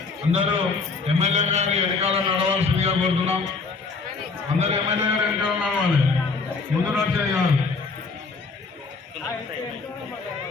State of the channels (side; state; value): right; quieter; 4.4 dB